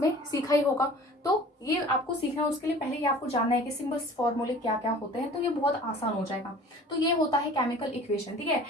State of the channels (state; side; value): normal; both; correlation 0.45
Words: सीखा ही होगा, तो ये आपको सीखना है। उसके लिए पहले ये आपको जानना है कि सिंबल्स फॉर्मूले क्या क्या होते हैं, तो ये बहुत आसान हो जाएगा। तो ये होता है केमिकल इक्वेशन, ठीक है।